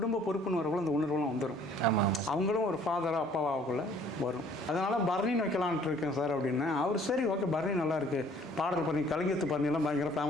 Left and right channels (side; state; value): both; normal; correlation 0.57